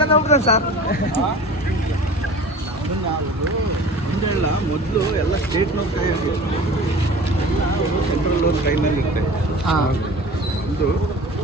ಹೋಗ್ತದೆ ಸರ್. ಹಿಂಗೆಲ್ಲ ಮೊದಲು ಎಲ್ಲ ಸ್ಟೇಟ್ನವ್ರ ಕೈ ಆಗಿರುತ್ತೆ, ಸೆಂಟ್ರಲ್ ಅವ್ರ ಕೈನಲ್ಲಿ ಇರುತ್ತೆ. ಇದು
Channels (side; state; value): both; normal; correlation 0.40